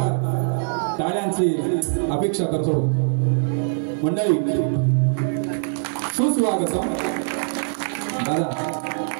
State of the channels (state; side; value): silent; left; digital silence